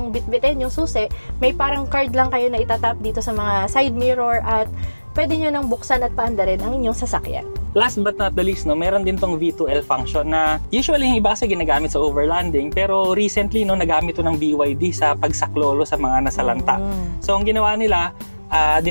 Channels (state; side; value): inverted; both; correlation -1.00